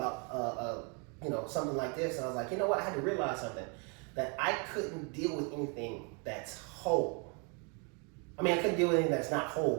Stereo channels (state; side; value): quieter; left; 35.2 dB